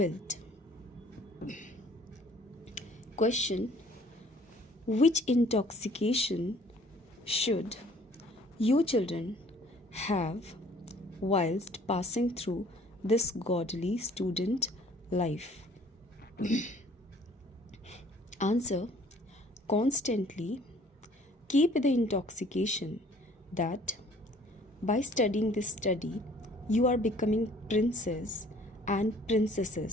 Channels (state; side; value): normal; both; correlation 0.56